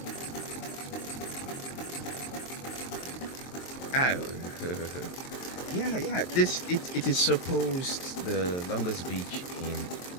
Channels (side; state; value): right; late; 23 ms